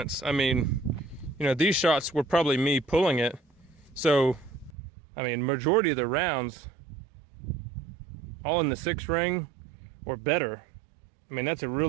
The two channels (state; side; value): drops out; left; at 4.7 s